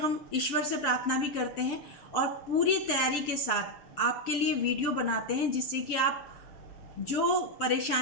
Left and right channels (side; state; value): right; late; 6.8 ms